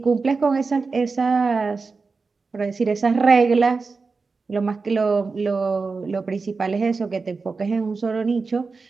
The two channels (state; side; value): quieter; left; 4.4 dB